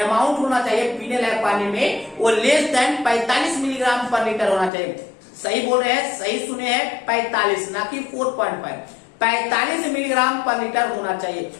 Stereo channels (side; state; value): right; drops out; at 4.7 s